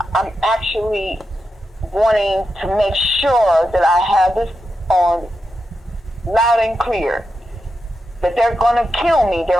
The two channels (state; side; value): normal; both; correlation 0.87